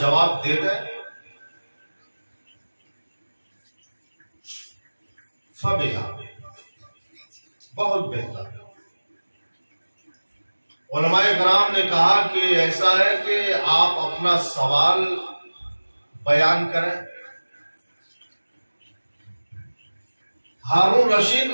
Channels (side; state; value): both; inverted; correlation -1.00